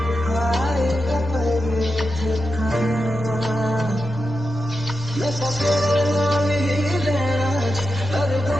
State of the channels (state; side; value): normal; both; correlation 0.89